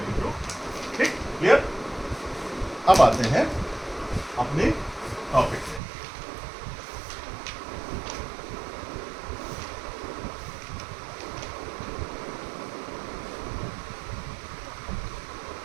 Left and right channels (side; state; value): left; drops out; at 5.8 s